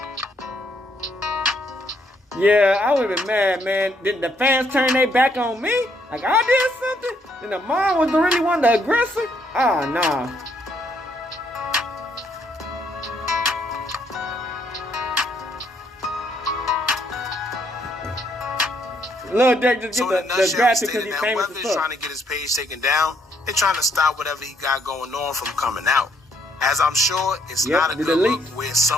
Yeah, I would have been mad, man. Did the fans turn their back on me? Like I did something? Then the mom was the really one, the aggressor? Ah, nah. Lildurk just So get in a the nutshell, graphic he because stated he's that famous whether as he's trying fuck. to get his page taken down, they're trying to stop whatever he got going on from coming out. As I'm sure it's Yep, not a the good look delete. where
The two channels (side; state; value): both; normal; correlation 0.71